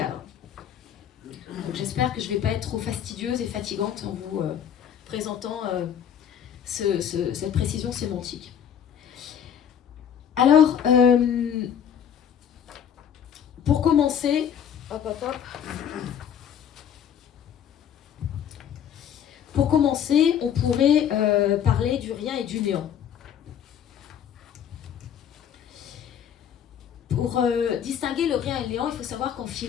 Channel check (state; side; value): quieter; right; 8.9 dB